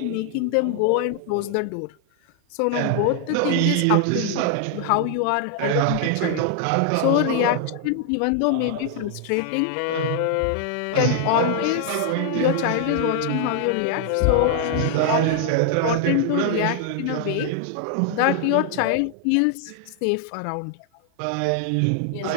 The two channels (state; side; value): different; both; correlation 0.00